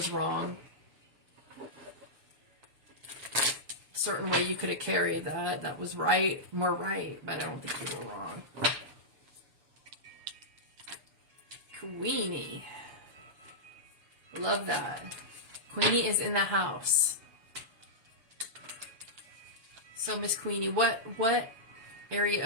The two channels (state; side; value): late; left; 6.9 ms